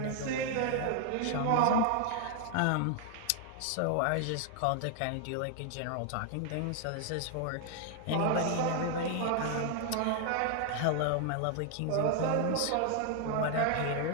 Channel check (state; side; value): different; both; correlation 0.00